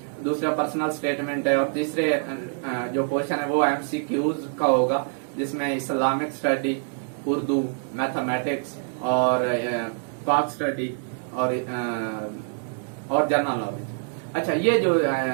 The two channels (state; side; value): silent; left; digital silence